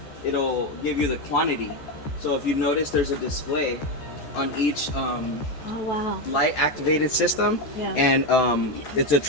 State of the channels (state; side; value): late; right; 14 ms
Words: It'll give you the quantity. So if you notice, there's a display on each light activated system. Yeah. And it's a